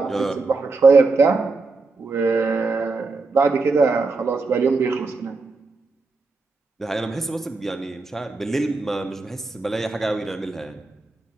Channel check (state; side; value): quieter; left; 3.8 dB